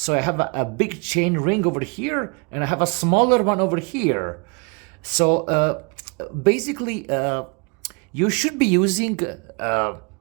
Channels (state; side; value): quieter; left; 32.5 dB